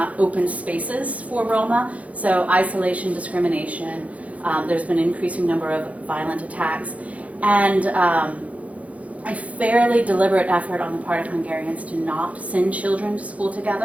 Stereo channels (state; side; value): late; left; 0.067 ms